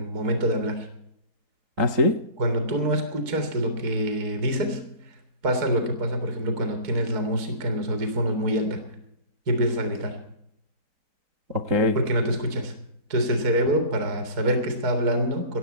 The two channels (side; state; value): left; late; 4.6 ms